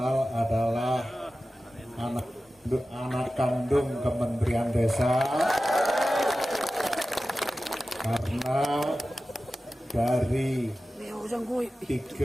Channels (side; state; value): both; normal; correlation 0.95